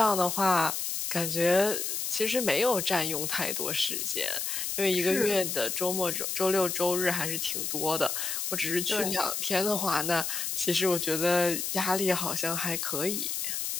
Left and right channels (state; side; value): noise; left; hiss, 2 dB below the sound